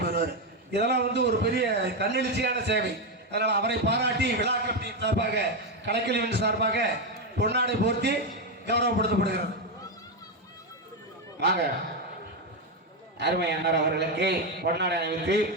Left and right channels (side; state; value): both; normal; correlation 0.07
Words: போயிடுவார். இதெல்லாம் வந்து ஒரு பெரிய தன்னெழுச்சியான சேவை. அதனால் அவரை பாராட்டி விழா கமிட்டி சார்பாக, கலைக்கல்வியின் சார்பாக பொன்னாடை போர்த்தி கௌரவப்படுத்தப்படுகிறது. வாங்க, அருமை அண்ணார் அவர்களுக்கு பொன்னாடை அணிவித்து